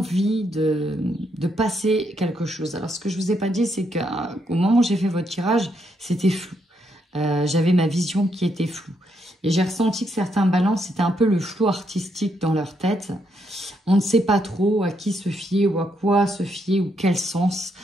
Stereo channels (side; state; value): both; normal; correlation 0.77